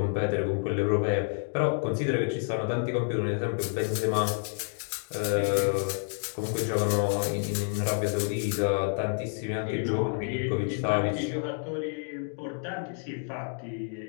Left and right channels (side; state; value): right; silent; 59 dB below the other